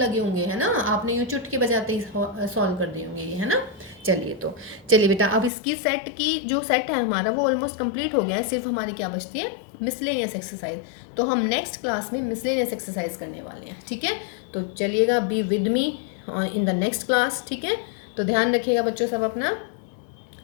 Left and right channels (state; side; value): drops out; right; at 5.5 s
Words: होंगे, है ना। आपने यूँ चुटकी बजाते ही सॉल्व कर दिए होंगे ये, है ना। चलिए बेटा, अब इसकी सेट की जो सेट है हमारा वो ऑलमोस्ट कंप्लीट हो गया है। सिर्फ हमारी क्या बचती है, मिसलेनियस एक्सरसाइज। तो हम नेक्स्ट क्लास में मिसलेनियस एक्सरसाइज करने वाले हैं, ठीक है। तो चलिएगा, be with me in the next class, ठीक है। तो ध्यान रखिएगा बच्चों सब अपना।